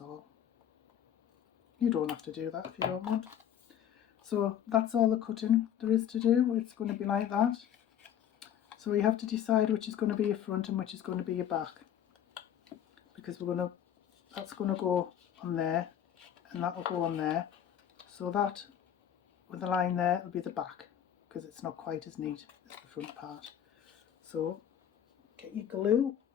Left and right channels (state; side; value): quieter; right; 9.7 dB